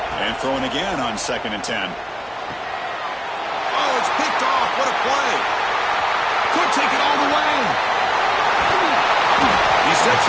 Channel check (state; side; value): identical; both; correlation 1.00